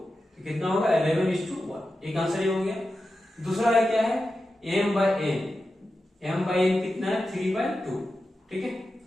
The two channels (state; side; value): normal; both; correlation 0.91